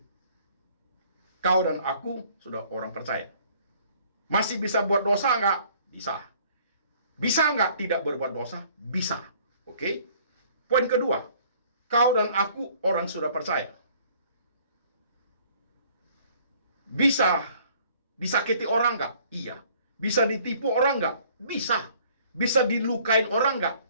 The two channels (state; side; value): inverted; both; correlation -0.57